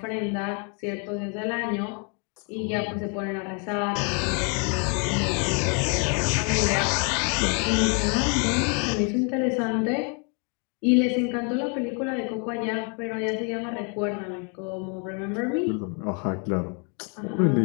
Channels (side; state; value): right; quieter; 37.5 dB